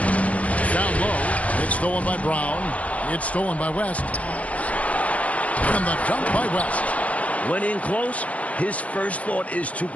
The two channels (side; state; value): right; late; 0.067 ms